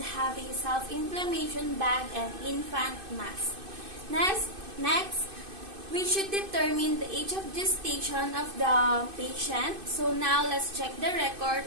have a self-inflammation bag and infant mask. Next, we should determine the age of gestation of the patient. So now let's check the record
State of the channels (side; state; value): left; late; 2.5 ms